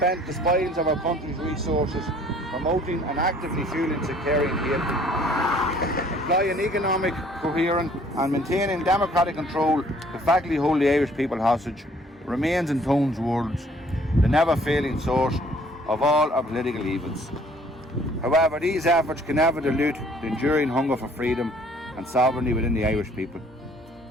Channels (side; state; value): both; normal; correlation 0.58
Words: the spoils of our country's resources promoting and actively fueling sectarian hatred, employing economic coherence and maintaining democratic control to factly hold the Irish people hostage, remains in Tone's words the never-failing source of all our political evils. However, these efforts can never dilute the enduring hunger for freedom and sovereignty within the Irish people.